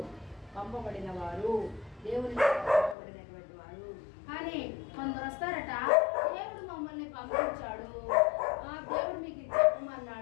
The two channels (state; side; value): drops out; right; at 3.0 s